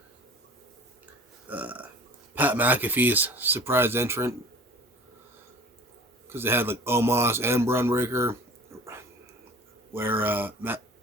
Pat McAfee's surprise entrant, because they had like Omos and Braun Breaker, where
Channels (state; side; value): normal; both; correlation 0.43